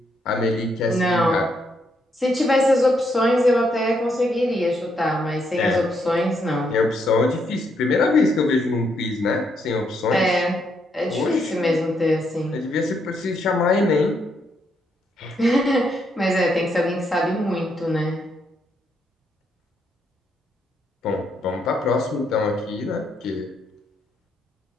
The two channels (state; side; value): normal; both; correlation 0.76